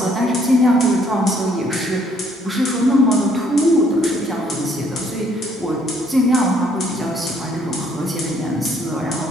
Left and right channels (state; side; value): normal; both; correlation 0.66